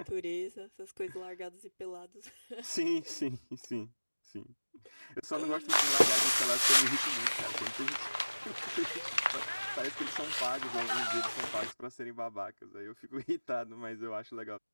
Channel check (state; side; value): inverted; both; correlation -1.00